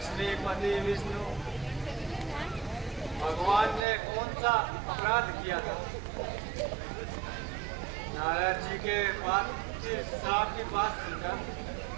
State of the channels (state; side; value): drops out; left; at 3.8 s